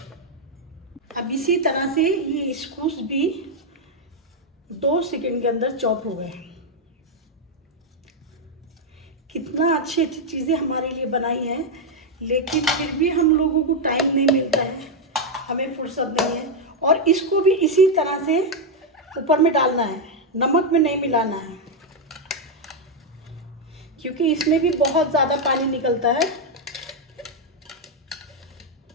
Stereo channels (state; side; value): normal; both; correlation 0.01